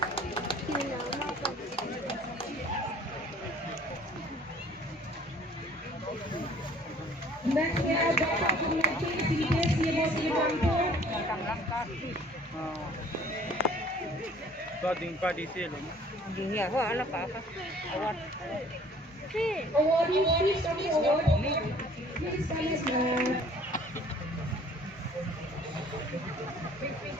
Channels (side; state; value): both; normal; correlation 0.54